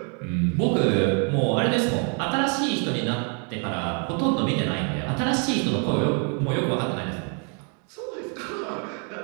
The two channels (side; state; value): left; quieter; 38.9 dB